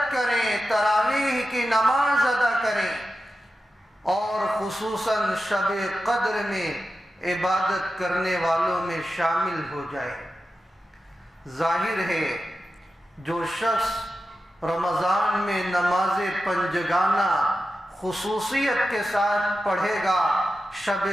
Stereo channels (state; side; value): normal; both; correlation 0.91